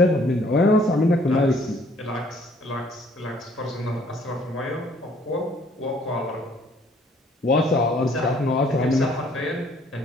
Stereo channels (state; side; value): normal; both; correlation 0.61